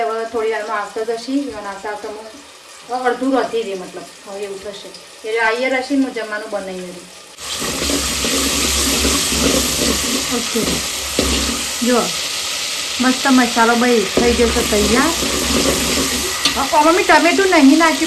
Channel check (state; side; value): identical; both; correlation 1.00